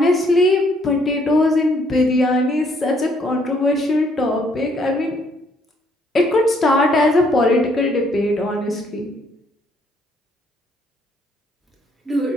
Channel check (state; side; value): normal; both; correlation 0.68